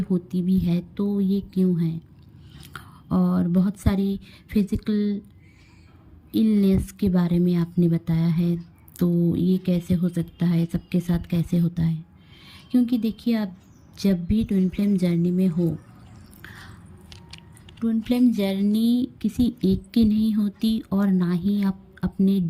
भी है, तो ये क्यों है। और बहुत सारी फिज़िकल इलनेस के बारे में आपने बताया है, तो ये कैसे हो सकता है, सबके साथ कैसे होता है। क्योंकि देखिए, आप जब भी ट्विन फ्लेम जर्नी में हो, ट्विन फ्लेम जर्नी किसी एक की नहीं होती, और ना ही आप अपने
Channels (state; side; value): identical; both; correlation 1.00